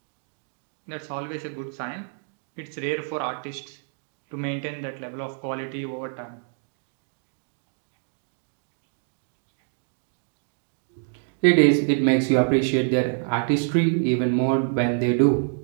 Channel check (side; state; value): left; silent; 61 dB below the other